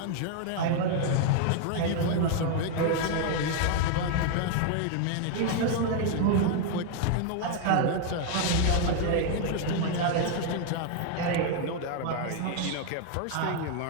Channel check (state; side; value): different; both; correlation 0.00